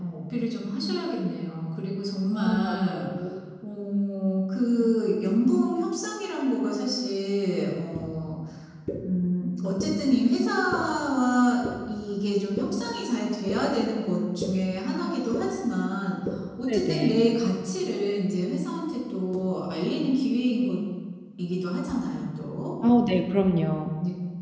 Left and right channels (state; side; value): identical; both; correlation 1.00